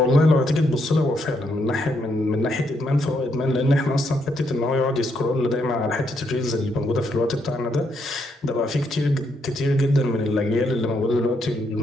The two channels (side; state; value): both; normal; correlation 0.76